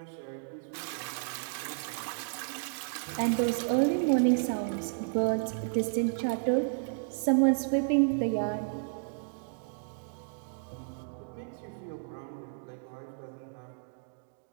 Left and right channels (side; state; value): left; silent; digital silence